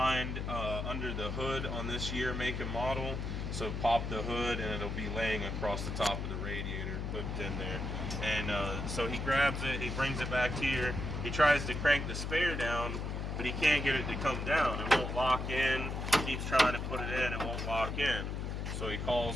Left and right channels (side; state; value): left; noise; hum, 3 dB below the sound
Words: under the hood on this year, make and model. So pop the hood and it'll be laying across the top of the radiator, hooked in there. And so he grabs it, he brings it back here. He tries to crank the spare down, but he can't get it to come down. It won't lock in. He keeps trying to put it in, it won't lock in. So he